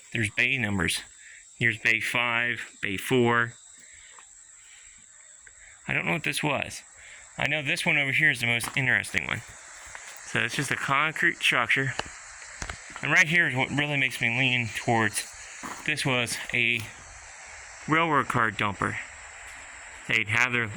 there's bay numbers. Here's bay 5, bay 4. I don't know what this was. I know this one over here is the most interesting one. So it's just a concrete structure. And right here is what really makes me lean towards this was a railroad car dumper. They'd have their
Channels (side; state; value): both; identical; correlation 1.00